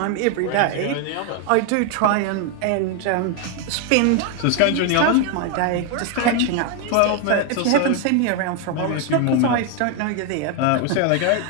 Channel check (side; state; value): both; different; correlation 0.01